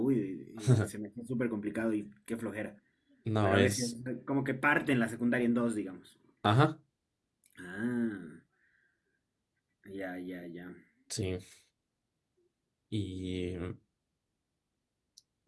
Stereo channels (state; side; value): identical; both; correlation 1.00